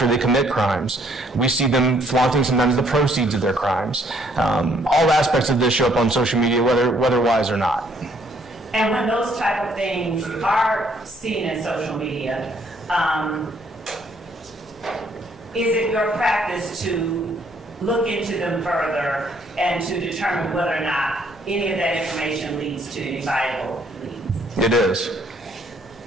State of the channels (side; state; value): both; normal; correlation 0.65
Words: they commit crimes. We see them flaunting sometimes the proceeds of their crimes. All aspects of this show up on social media, whether wise or not. And when those type of things are seen in social media, is it your practice to look into them further and to determine whether or not any of that information leads to any viable leads? It is.